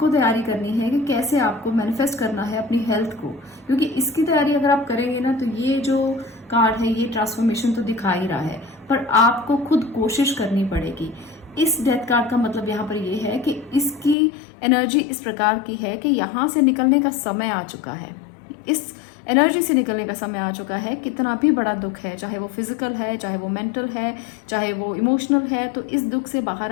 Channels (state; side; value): drops out; right; at 14.2 s